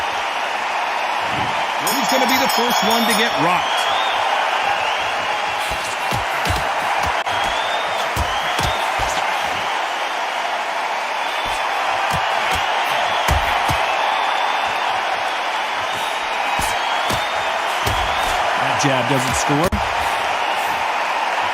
who's going to be the first one to get rocked? That jab doesn't score.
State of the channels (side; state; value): both; identical; correlation 1.00